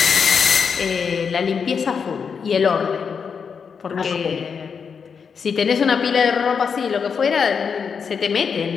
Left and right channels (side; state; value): right; quieter; 6.2 dB